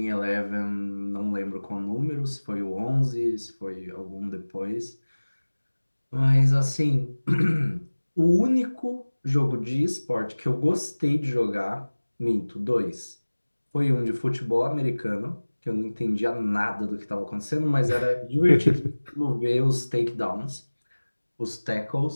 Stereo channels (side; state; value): both; inverted; correlation -1.00